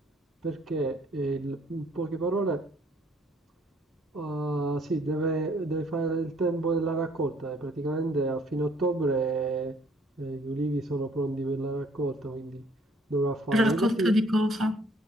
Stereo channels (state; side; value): normal; both; correlation 0.61